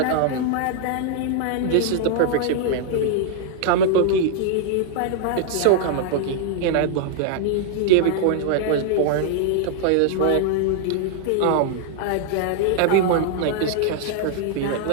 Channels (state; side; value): different; both; correlation 0.00